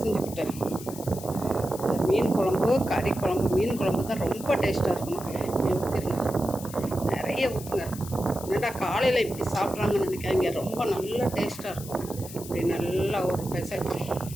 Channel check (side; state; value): left; noise; hiss, 14 dB below the sound